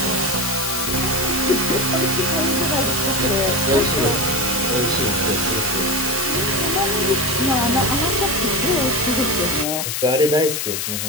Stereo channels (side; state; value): left; noise; hiss, 2 dB below the sound